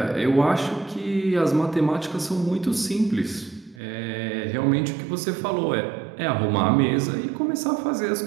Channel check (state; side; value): drops out; left; at 3.8 s